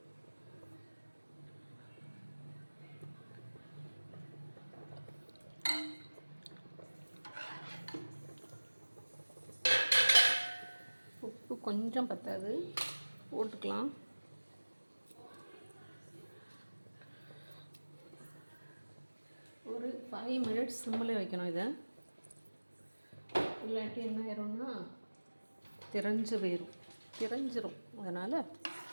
உப்பு கொஞ்சம் பத்தாது, போட்டுக்கலாம். ஒரு 5 மினிட்ஸ் சிம்மில் வைக்கணும். இதை இல்லாட்டி என்ன ஆயிரும்னா திரஞ்சிரும். அதனால்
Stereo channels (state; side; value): inverted; both; correlation -1.00